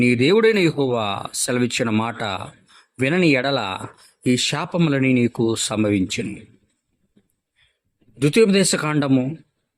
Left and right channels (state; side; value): identical; both; correlation 1.00